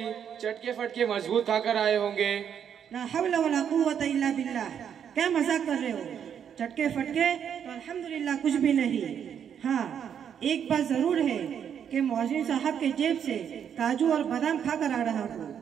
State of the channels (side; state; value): left; quieter; 8.4 dB